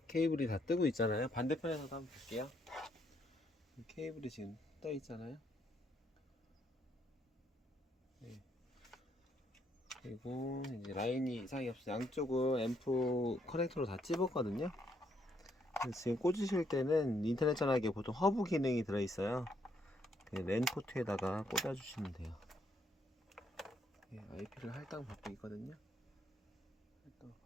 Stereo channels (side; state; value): both; normal; correlation 0.73